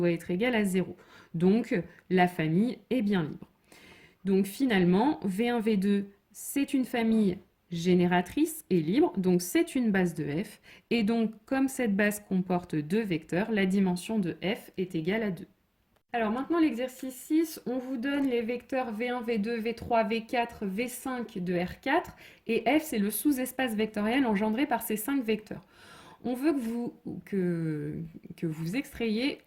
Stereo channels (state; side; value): identical; both; correlation 1.00